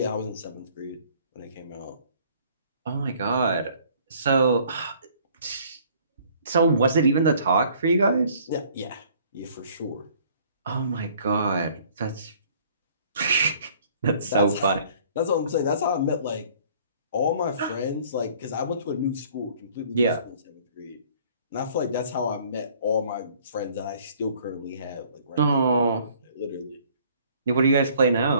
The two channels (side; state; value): both; inverted; correlation -0.57